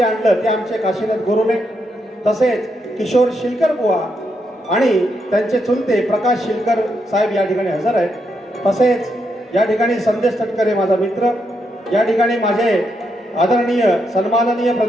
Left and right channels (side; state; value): both; normal; correlation 0.80